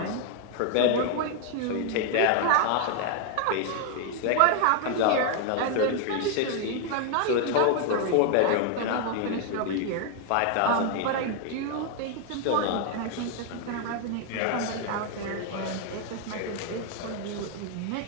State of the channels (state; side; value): different; both; correlation 0.00